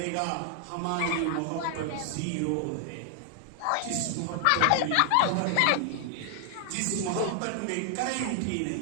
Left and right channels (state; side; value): different; both; correlation 0.00